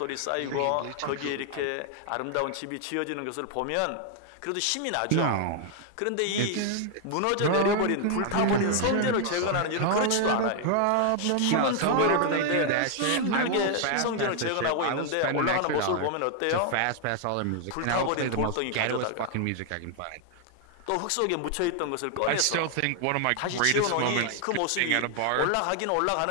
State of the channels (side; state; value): both; different; correlation 0.00